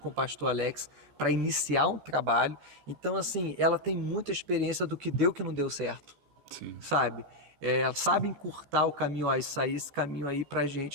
o pastor Alex, para iniciar um trabalho. Então, assim, ela tem muita experiência do que deu e que não deu certo, Sim. sabe? Ela sabe encurtar o caminho, ó, isso aí, esse caminho aí pra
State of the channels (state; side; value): late; left; 14 ms